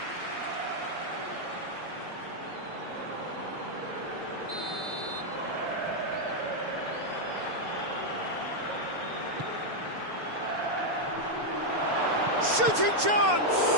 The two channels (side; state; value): left; late; 6.8 ms